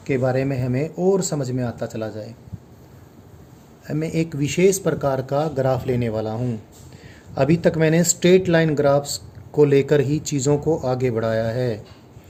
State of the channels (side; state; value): both; identical; correlation 1.00